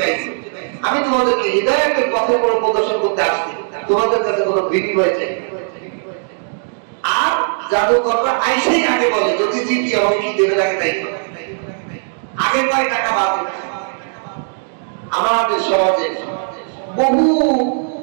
আইছি, আমি তোমাদেরকে হিদায়াতের পথে কোনো প্রদর্শন করতে আসছি, তোমাদের কাছে কোনো বিনিময় চাই না। আর জাদুকররা আইসেই আগে বলে, যদি জিতি আমাকে কি দেবে লাগে তাই আগে কয় টাকা বাজে। আমাদের সমাজে বহু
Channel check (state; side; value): silent; left; 68 dB below the other